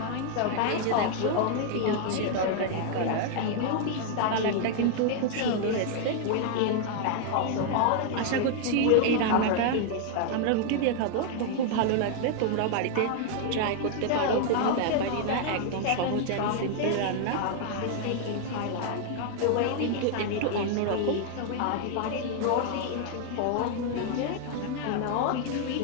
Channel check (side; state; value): both; different; correlation 0.00